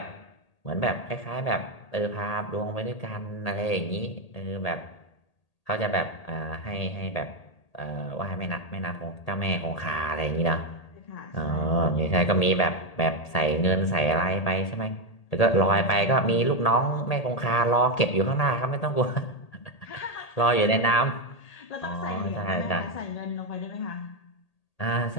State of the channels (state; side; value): late; right; 1.8 ms